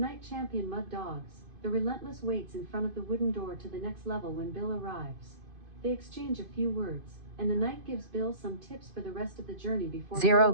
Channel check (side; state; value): left; late; 2.5 ms